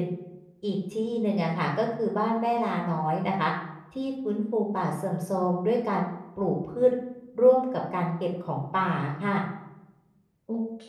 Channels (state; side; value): identical; both; correlation 1.00